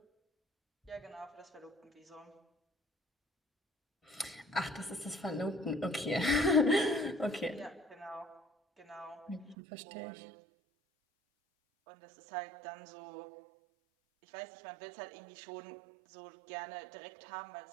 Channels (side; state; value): left; drops out; at 9.6 s